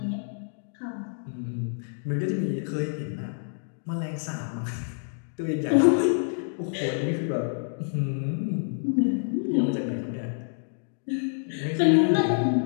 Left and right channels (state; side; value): silent; right; digital silence